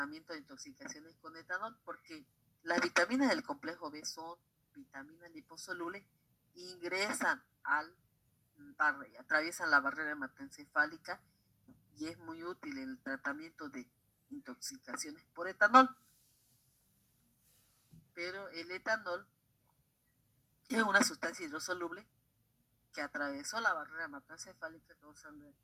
de intoxicaciones con etanol? Porque las vitaminas del complejo B son vitaminas liposolubles e ingresan atraviesan la barrera hematoencefálica y es muy útil en el tratamiento de intoxicaciones por etanol. Pero el etanol es una sustancia hidrosoluble que atravesó la barrera hematoencefálica causando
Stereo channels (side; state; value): both; identical; correlation 1.00